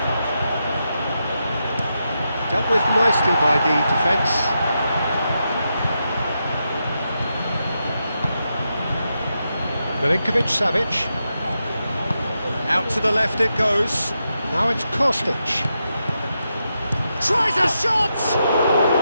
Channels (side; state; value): both; inverted; correlation -0.86